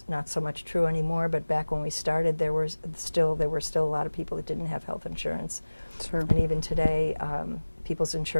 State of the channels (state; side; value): inverted; both; correlation -1.00